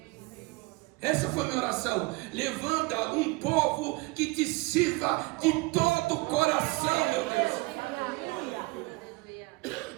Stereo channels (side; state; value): left; quieter; 24.0 dB